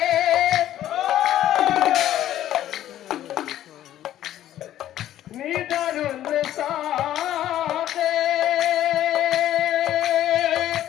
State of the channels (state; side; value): quieter; right; 12.4 dB